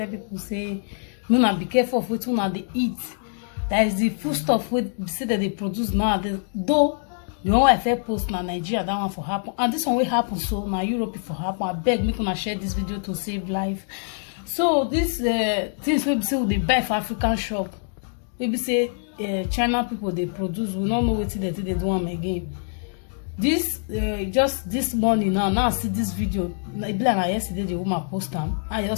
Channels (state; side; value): silent; right; digital silence